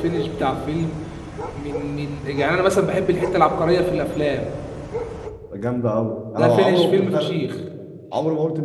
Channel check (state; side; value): identical; both; correlation 1.00